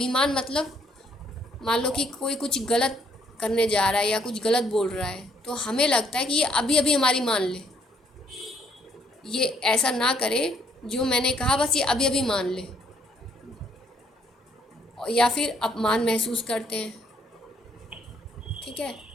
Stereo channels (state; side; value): normal; both; correlation 0.68